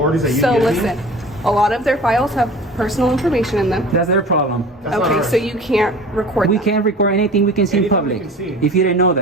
that you So give listen, me. a lot of their files have personal information in them. That's their problem. That's not Okay, ours. so you can't record We them. can't record anything we can see in Anything we public. can see. If you didn't know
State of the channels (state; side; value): normal; both; correlation 0.40